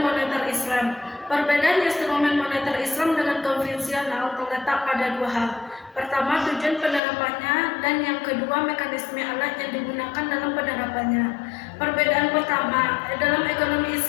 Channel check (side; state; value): right; drops out; at 7.0 s